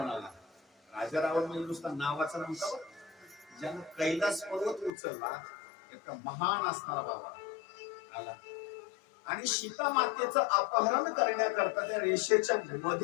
आला. राजा रावण म्हणजे नुसता नावाचा नव्हता, ज्यानं कैलास पर्वत उचलला, एक महान असणारा बाबा आला आणि सीता मातेचं अपहरण करण्याकरता त्या रेषेच्या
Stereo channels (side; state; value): right; drops out; at 4.9 s